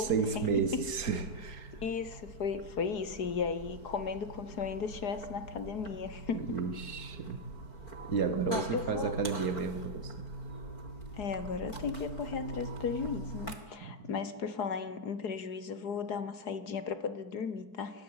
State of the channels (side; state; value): right; late; 4.5 ms